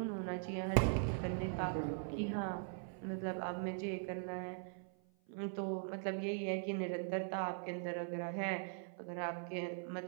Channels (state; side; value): silent; left; 50 dB below the other